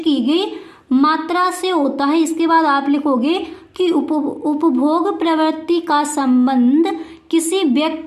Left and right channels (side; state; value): both; identical; correlation 1.00